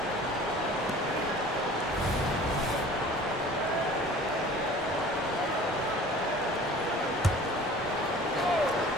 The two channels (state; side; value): normal; both; correlation 0.45